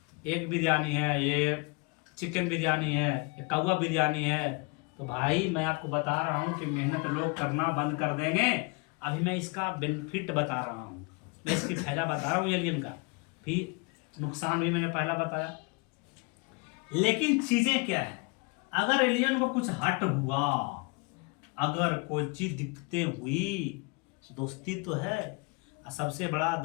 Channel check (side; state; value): right; quieter; 29.8 dB